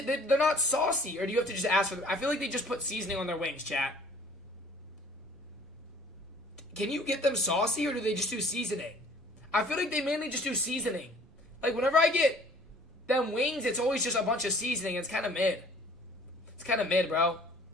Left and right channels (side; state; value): both; normal; correlation 0.53